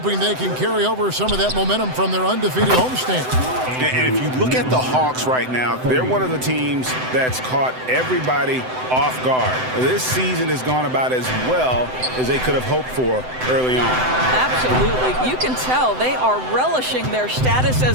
they can carry over some of that momentum from their undefeated homestand. And if you look at the Hawks right now, they're one of the teams that's caught everybody off guard. This season has gone about as well as they could have hoped for early on. Absolutely. You can tell they are relishing their status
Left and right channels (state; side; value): late; left; 7.8 ms